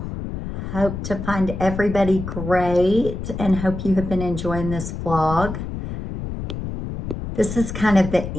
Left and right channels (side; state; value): left; noise; rumble, 7 dB below the sound